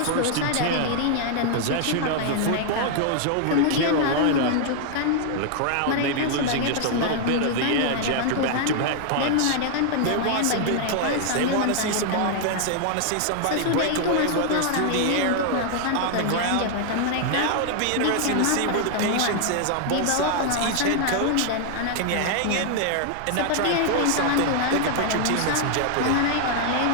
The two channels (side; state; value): both; different; correlation 0.00